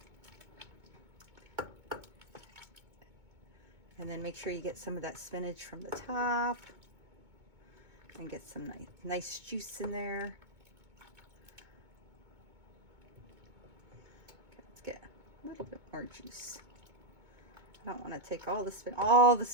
And then make sure you get some of that spinach from the top. And get some nice juice in there. Okay, let's get a little bit more juice. I don't want to take all the spinach. All the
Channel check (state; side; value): late; left; 2.2 ms